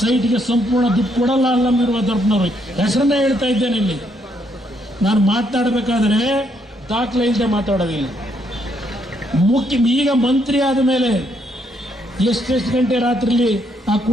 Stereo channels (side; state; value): both; normal; correlation 0.73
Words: ಸಂಪೂರ್ಣ ದುಡ್ಡು ಕೊಡಲ್ಲ ಅಲ್ಲಮ ವೀರಭದ್ರಪ್ಪನವರು. ಹೆಸರನ್ನೇ ಹೇಳ್ತಾ ಇದ್ದೇನೆ ಇಲ್ಲಿ. ನಾನು ಮಾತಾಡಬೇಕಾದ್ರೆ ದಾಖಲೆ ಇಲ್ಲದೆ ಮಾತಾಡೋದಿಲ್ಲ. ಈಗ ಮಂತ್ರಿ ಆದ ಮೇಲೆ ಎಷ್ಟೆಷ್ಟು ಗಂಟೆ ರಾತ್ರಿಲಿ ಆ